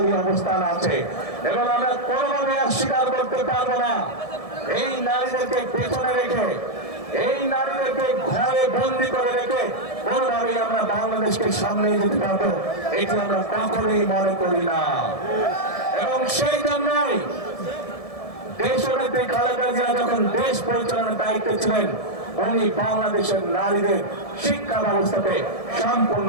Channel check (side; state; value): right; late; 1.7 ms